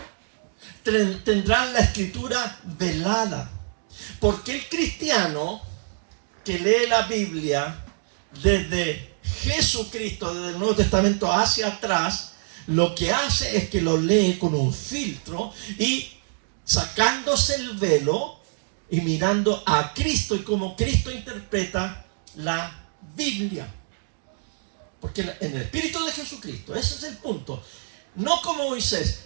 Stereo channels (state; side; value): silent; left; digital silence